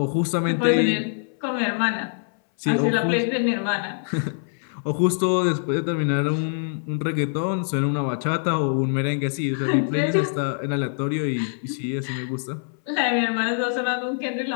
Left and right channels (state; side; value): silent; right; 59 dB below the other